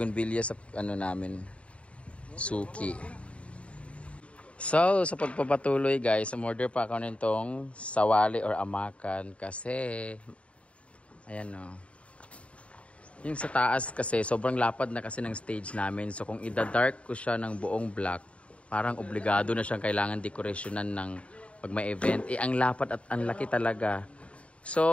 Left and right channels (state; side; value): late; right; 0.063 ms